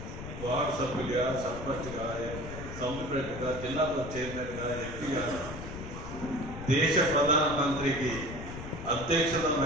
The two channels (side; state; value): left; noise; rumble, 9 dB below the sound